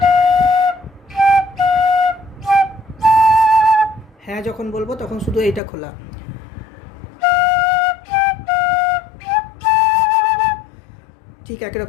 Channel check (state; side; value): drops out; right; at 5.6 s